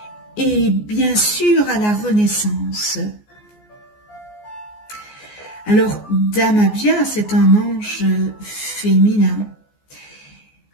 et bien sûr à la renaissance. Alors, d'Amabia, c'est un ange féminin.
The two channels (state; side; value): late; right; 14 ms